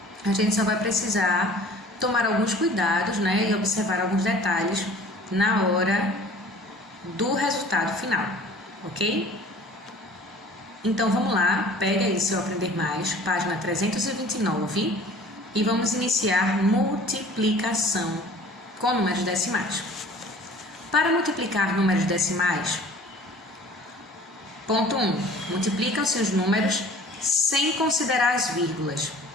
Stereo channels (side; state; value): both; normal; correlation 0.48